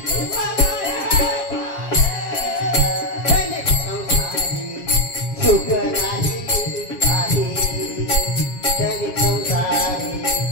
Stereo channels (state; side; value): late; right; 7.4 ms